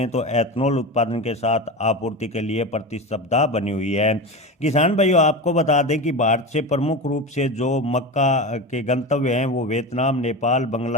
तो एथनॉल उत्पादन के साथ आपूर्ति के लिए प्रतिस्पर्धा बनी हुई है। किसान भाइयों, आपको बता दें कि भारत से प्रमुख रूप से जो मक्का के गंतव्य हैं वो वियतनाम, नेपाल,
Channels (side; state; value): both; normal; correlation 0.24